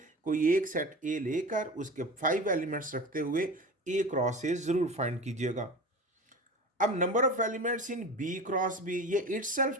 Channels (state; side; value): normal; both; correlation 0.32